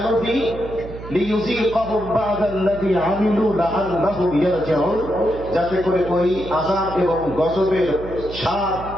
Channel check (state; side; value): noise; right; hum, 13 dB below the sound